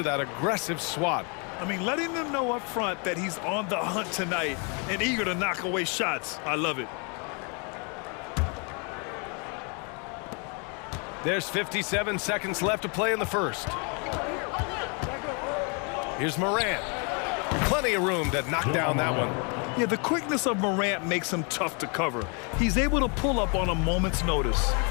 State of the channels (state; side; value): quieter; right; 35.1 dB